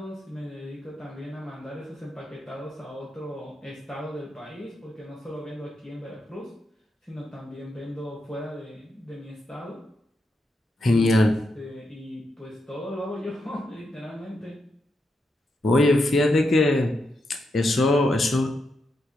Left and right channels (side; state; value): both; normal; correlation 0.83